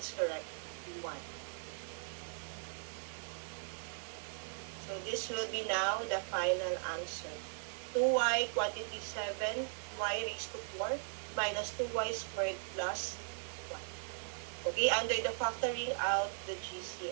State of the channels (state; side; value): silent; left; digital silence